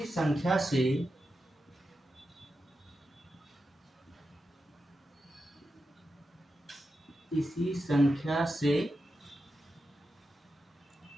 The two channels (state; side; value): normal; both; correlation 0.89